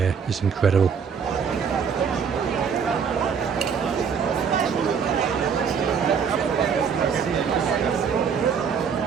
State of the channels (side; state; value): left; quieter; 6.6 dB